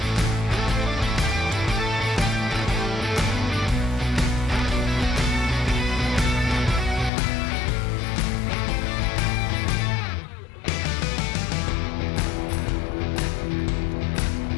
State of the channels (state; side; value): drops out; right; at 7.1 s